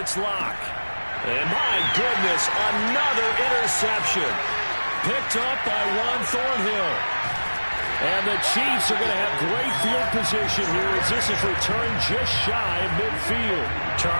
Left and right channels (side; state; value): both; inverted; correlation -1.00